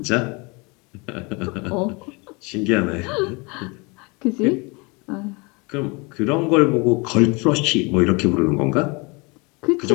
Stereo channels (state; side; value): quieter; right; 28.5 dB